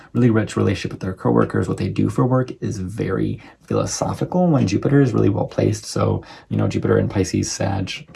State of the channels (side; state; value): both; identical; correlation 1.00